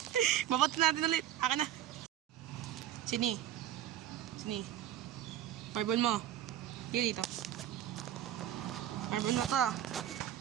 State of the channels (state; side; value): quieter; left; 11.6 dB